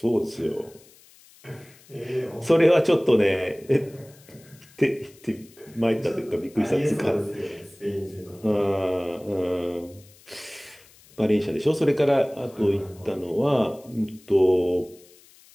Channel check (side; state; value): left; noise; hiss, 26 dB below the sound